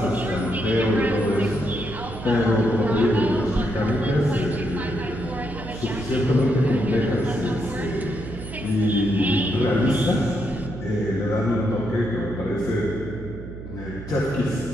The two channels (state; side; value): noise; right; hum, 11 dB below the sound